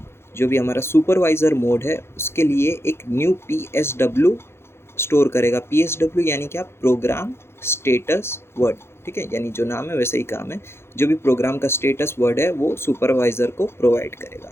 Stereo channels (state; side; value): late; right; 0.12 ms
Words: जो भी हमारा सुपरवाइज़र मोड है उसके लिए एक न्यू PSW स्टोर करेगा। PSW यानी क्या, प्रोग्राम स्टेटस वर्ड। ठीक है, यानी जो नाम है वैसे ही काम है, जो भी प्रोग्राम का स्टेटस वर्ड है वो सुपरवाइज़र को प्रोवाइड करेगा।